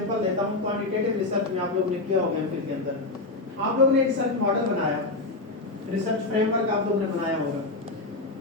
देता हूं, क्वांटिटेटिव रिसर्च में आप लोगों ने किया होगा एमफिल के अंदर, आप लोगों ने एक रिसर्च मॉडल बनाया, रिसर्च फ्रेमवर्क आप लोगों ने बनाया होगा,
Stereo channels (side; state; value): right; quieter; 3.1 dB